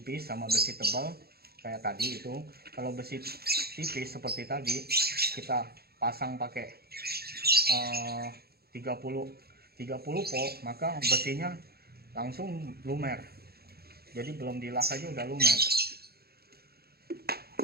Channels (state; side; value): late; left; 0.46 ms